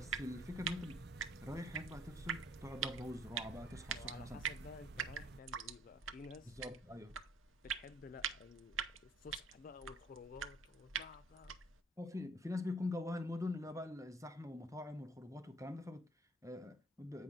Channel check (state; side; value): normal; both; correlation 0.57